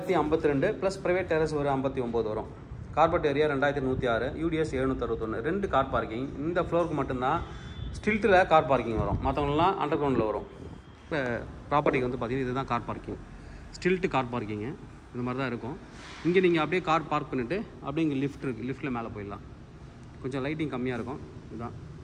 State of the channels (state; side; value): identical; both; correlation 1.00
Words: ப்ளஸ் ப்ரைவேட் டெரஸ் ஒரு 59 வரும். Carpet area 2106, UDS 761. 2 car parking. இந்த ஃப்ளோருக்கு மட்டும்தான் ஸ்டில்ட்டில் கார் பார்க்கிங் வரும். மற்றவங்களாம் அண்டர் கிரவுண்டில் வரும். இப்போ ப்ராப்பர்ட்டிக்கு வந்து பார்த்திங்கன்னா இதுதான் car parking. Stilt car parking இந்த மாதிரி தான் இருக்கும். இங்கே நீங்கள் அப்படியே கார் பார்க் பண்ணிவிட்டு அப்படியே இங்கே லிஃப்ட் இருக்குது. லிஃப்ட்டில் மேலே போயிடலாம். கொஞ்சம் லைட்டிங் கம்மியாக இருக்கும். இதுதான்